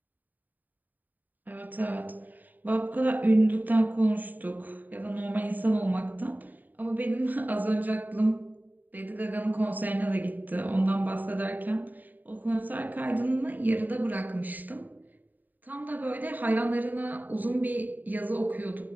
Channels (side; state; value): left; late; 0.087 ms